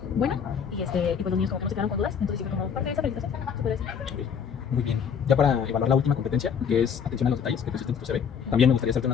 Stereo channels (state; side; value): quieter; right; 7.2 dB